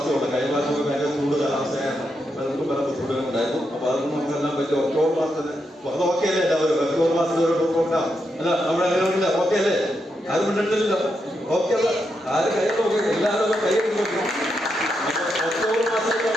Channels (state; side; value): normal; both; correlation 0.83